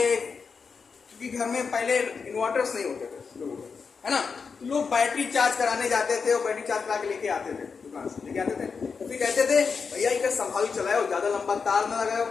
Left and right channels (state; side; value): quieter; right; 5.4 dB